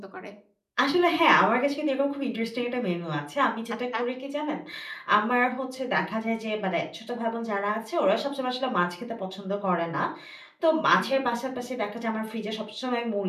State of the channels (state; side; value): identical; both; correlation 1.00